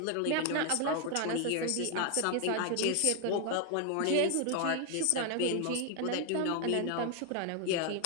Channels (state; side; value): different; both; correlation 0.00